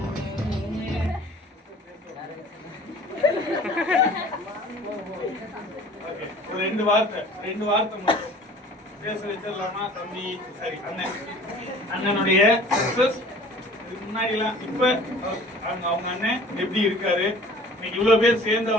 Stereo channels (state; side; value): normal; both; correlation 0.48